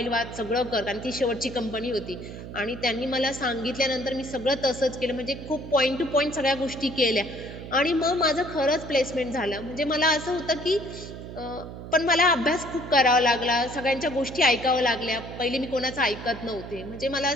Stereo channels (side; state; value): right; noise; hum, 11 dB below the sound